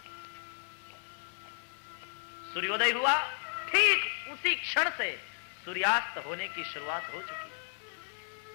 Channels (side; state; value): right; silent; digital silence